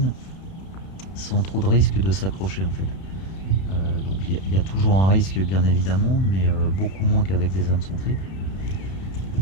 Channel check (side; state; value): right; late; 31 ms